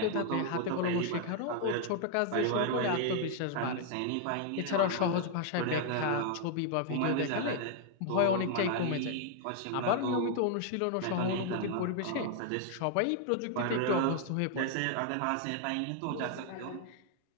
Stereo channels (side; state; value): both; different; correlation 0.00